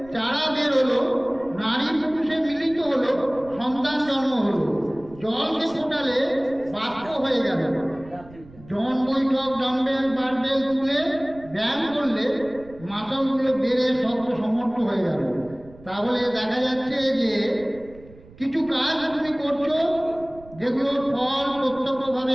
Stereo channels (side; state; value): right; noise; rumble, 21 dB below the sound